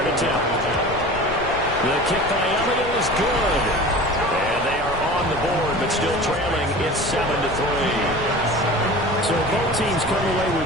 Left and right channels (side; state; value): left; noise; rumble, 11 dB below the sound